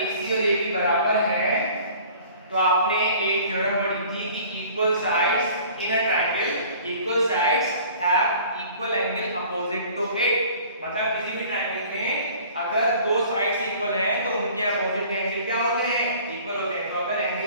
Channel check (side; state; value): both; inverted; correlation -0.48